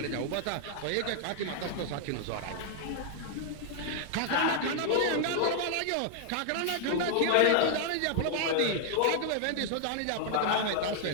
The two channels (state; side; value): different; both; correlation 0.00